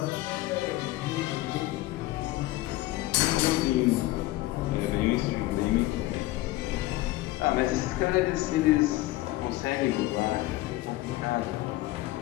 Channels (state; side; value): quieter; right; 17.8 dB